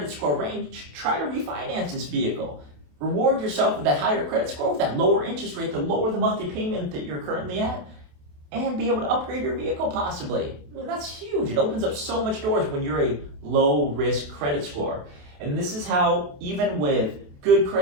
score range, try to refinance this vehicle. Reward yourself with that higher credit score, with that lower interest rate to lower the monthly payment that you're currently at, and be able to upgrade your vehicle possibly. I mean, that's huge. It opens up so much doors when you're a low risk credit score. And this is how, even with good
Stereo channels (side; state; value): left; late; 28 ms